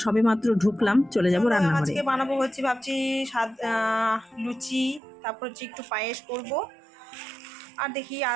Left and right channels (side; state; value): left; drops out; at 5.0 s